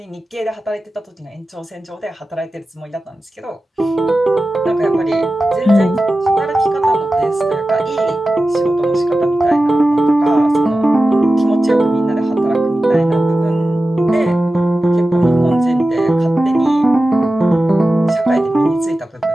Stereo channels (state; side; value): normal; both; correlation 0.94